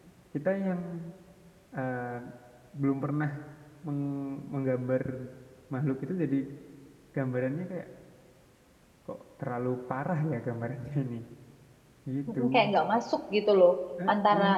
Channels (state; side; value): identical; both; correlation 1.00